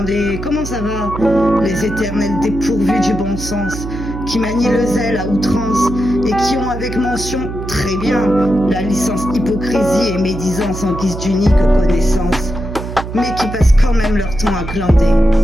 comment ça va. Les éternels dépourvus du bon sens qui manient le zèle à outrance et qui ont avec mention très bien la licence hypocrisie et médisance en guise d'unique connaissance, mais qui passent quand même leur temps à glander,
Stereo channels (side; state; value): right; noise; hum, 8 dB below the sound